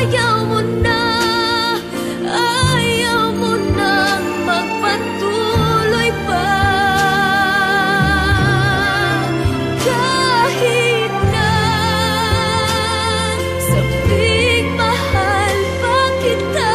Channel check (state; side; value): identical; both; correlation 1.00